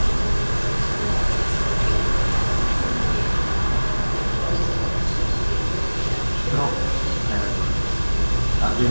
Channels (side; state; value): both; inverted; correlation -1.00